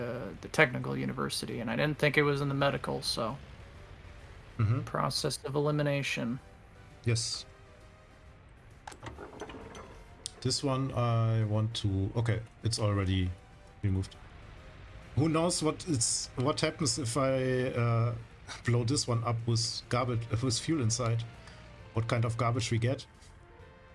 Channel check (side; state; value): both; identical; correlation 1.00